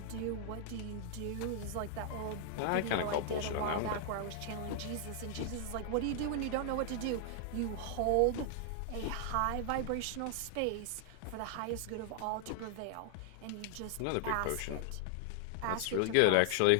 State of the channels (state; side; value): different; both; correlation 0.00